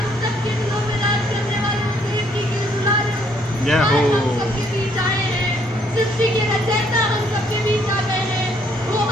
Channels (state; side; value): normal; both; correlation 0.67